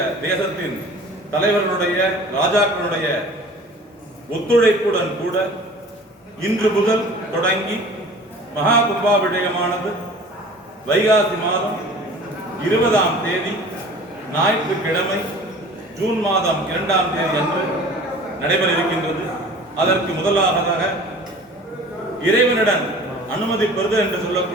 தேசத்தின் தலைவர்களுடைய, ராஜாக்களுடைய ஒத்துழைப்புடன் கூட இன்று முதல் தொடங்கி மகா கும்பாபிஷேகமானது வைகாசி மாதம் 20ஆம் தேதி ஞாயிற்றுக்கிழமை ஜூன் மாதம் 2ஆம் தேதி அன்று நடைபெற இருக்கின்றது. அதற்கு முதலாவதாக இறைவனிடம் அனுமதி பெறுதல் என்று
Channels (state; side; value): normal; both; correlation 0.44